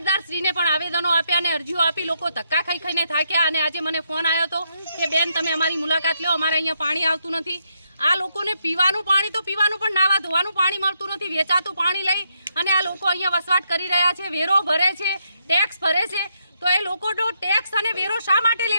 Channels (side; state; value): both; inverted; correlation -0.78